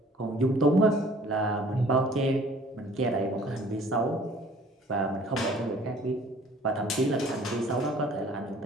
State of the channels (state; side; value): normal; both; correlation 0.53